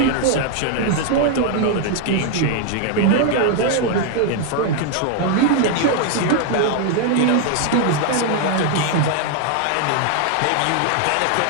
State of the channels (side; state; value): both; different; correlation 0.00